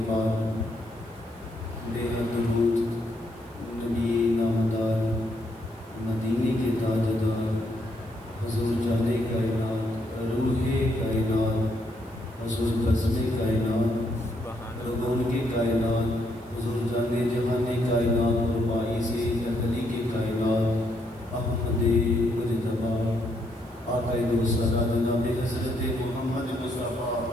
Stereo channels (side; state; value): right; noise; hiss, 29 dB below the sound